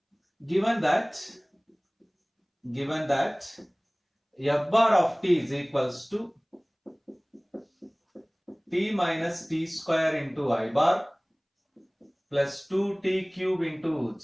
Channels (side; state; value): both; identical; correlation 1.00